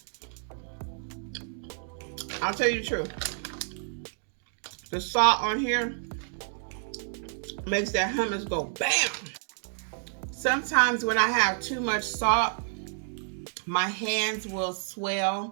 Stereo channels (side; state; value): left; silent; 58 dB below the other